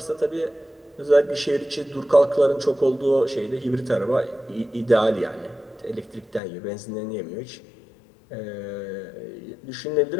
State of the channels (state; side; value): drops out; right; at 6.4 s